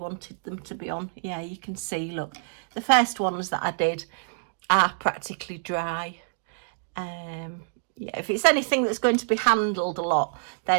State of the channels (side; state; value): left; silent; digital silence